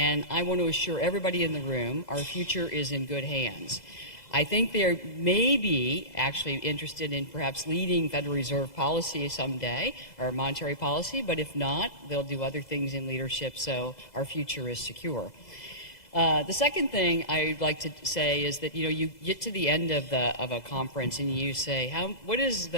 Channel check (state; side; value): late; right; 2.0 ms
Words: I want to assure everybody in the room our future is in good hands. I think they may be actually interested in perhaps leading Federal Reserve policy someday, or monetary policy, but if not, they'll do other things in leadership, so our future is secure. The second thing I'd like to say is that, you get to the end of a conference and you say, what is